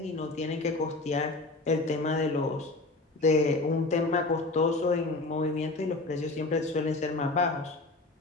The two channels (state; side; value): quieter; right; 3.1 dB